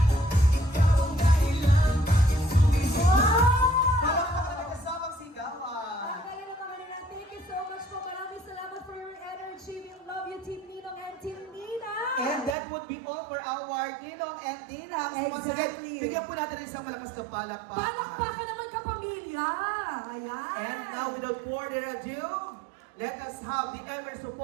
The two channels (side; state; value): left; drops out; at 12.6 s